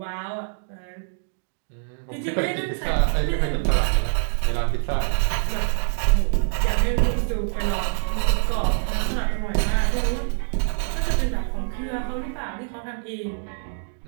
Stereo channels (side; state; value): left; silent; digital silence